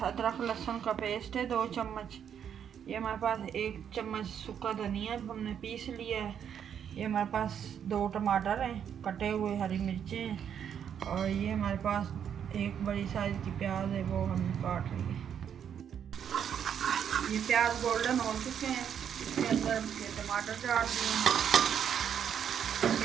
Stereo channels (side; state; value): left; quieter; 8.5 dB